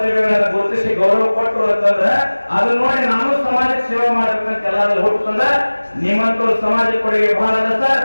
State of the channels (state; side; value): inverted; both; correlation -1.00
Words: ಗುರುತಿಸಿ ಗೌರವ ಕೊಟ್ಟರು ಅಂತಂದ್ರ ಅದನ್ನ ನೋಡಿ ನಾನು ಸಮಾಜಕ್ಕೆ ಸೇವೆ ಮಾಡ್ಬೇಕಂತ ಎಲ್ಲಾದ್ರೂ ಹುಟ್ಟಂದ್ರ ನಿಮ್ಮಂತವ್ರು ಸಮಾಜಕ್ಕೆ ಕೊಡುಗೆ ಬಹಳ ಅದ ಸರ್.